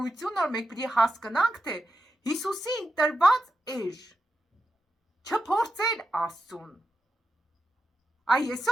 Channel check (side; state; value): both; normal; correlation 0.88